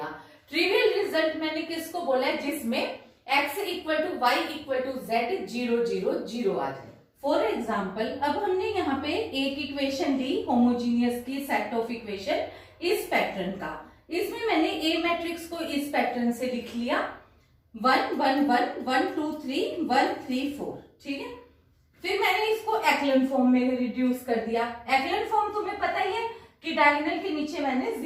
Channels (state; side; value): identical; both; correlation 1.00